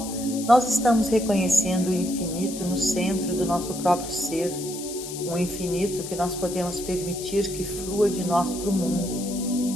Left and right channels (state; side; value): noise; left; hiss, 10 dB below the sound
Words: nós estamos reconhecendo o infinito no centro do nosso próprio ser, um infinito que nós podemos permitir que flua de nós para o